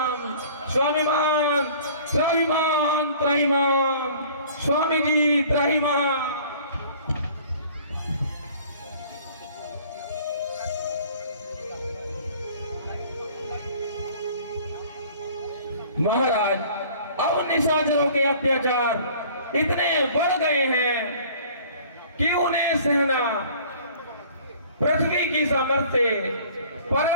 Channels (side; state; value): both; inverted; correlation -0.50